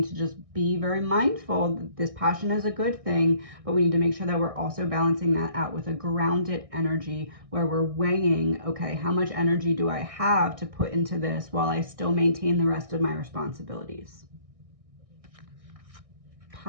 to just be very mindful that this passion is a good thing, but we need to make sure that we're also balancing that out with a grounded energy where we're weighing, okay, how much energy do I have to put into this while I still maintain the rest of my responsibilities?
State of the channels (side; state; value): left; late; 1.6 ms